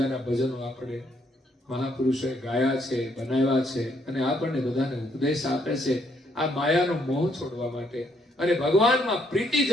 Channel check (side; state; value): both; normal; correlation 0.71